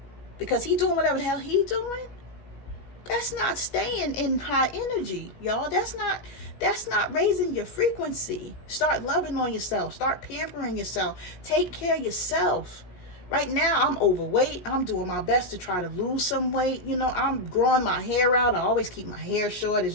because he doing whatever the hell he doing, that's not staying in high energy, y'all. That's not raising your frequency. Start loving on yourself. Start pampering yourself. Take care of yourself. Right now, I'm overweight. I'm doing my best to try to lose some weight. You know, I'm growing my hair out. I always keep my hair short, as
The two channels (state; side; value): late; right; 17 ms